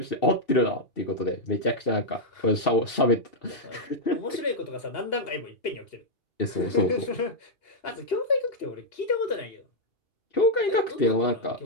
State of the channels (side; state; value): right; late; 2.8 ms